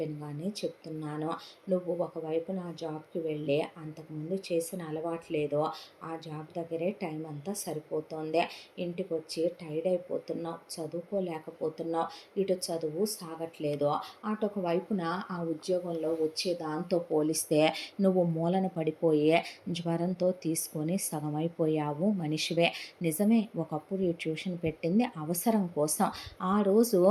చెప్తున్నాను, నువ్వు ఒకవైపు నా జాబ్కి వెళ్ళి అంతకుముందు చేసిన అలవాట్లేదో ఆ జాబ్ దగ్గరే టైం అంతా సరిపోతుంది, ఇంటికి వచ్చి టైర్డ్ అయిపోతున్నావు, చదువుకోలేకపోతున్నావు, ఇటు చదువు సాగట్లేదు, అటొక వైపున ఆ ఉద్యోగంలో వచ్చే దాంతో పోలిస్తే నువ్వు మూలన పడిపోయే జ్వరంతో తీసుకొని సగమైపోయావు మనిషివే. నిజమే ఒకప్పుడు ఈ ట్యూషన్ పెట్టింది అవసరం కోసం, ఆ రోజు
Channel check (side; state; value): both; identical; correlation 1.00